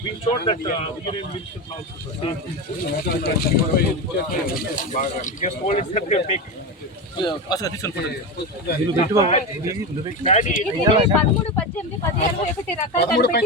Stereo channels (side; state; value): both; normal; correlation 0.19